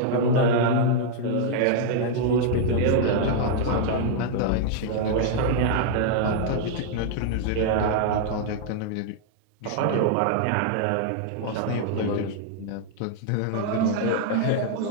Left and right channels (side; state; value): both; different; correlation -0.01